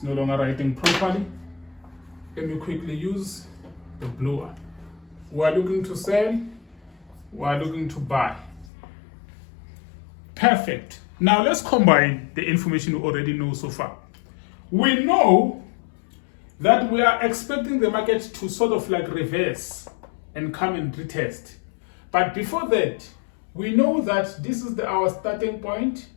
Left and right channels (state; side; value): drops out; right; at 8.7 s